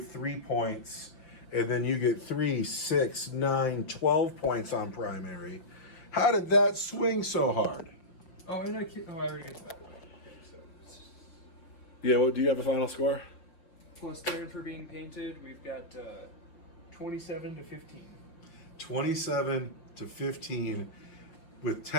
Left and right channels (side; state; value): right; late; 5.8 ms